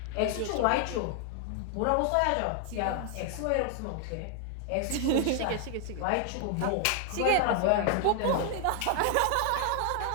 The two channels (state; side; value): different; both; correlation 0.00